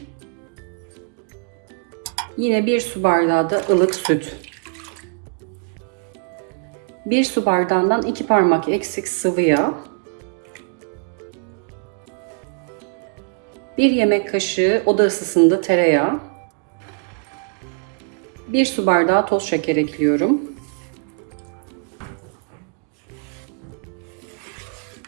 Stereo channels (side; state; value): left; quieter; 39.7 dB